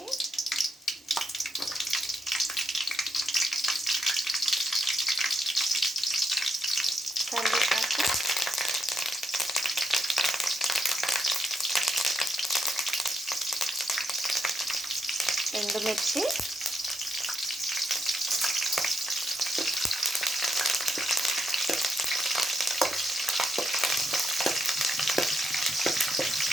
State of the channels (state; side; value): normal; both; correlation 0.80